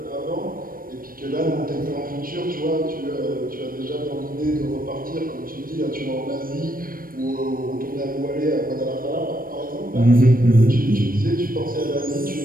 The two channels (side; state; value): left; late; 0.41 ms